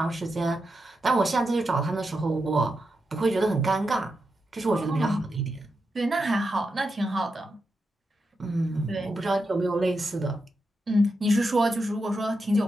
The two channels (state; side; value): normal; both; correlation 0.87